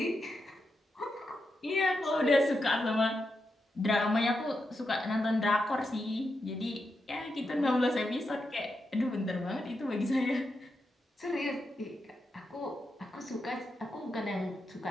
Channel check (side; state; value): both; normal; correlation 0.86